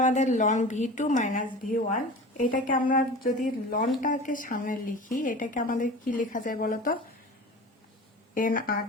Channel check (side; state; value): both; normal; correlation 0.36